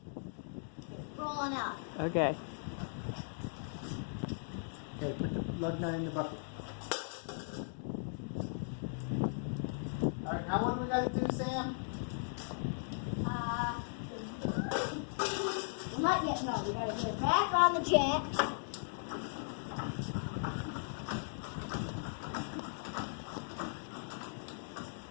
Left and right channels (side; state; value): right; silent; digital silence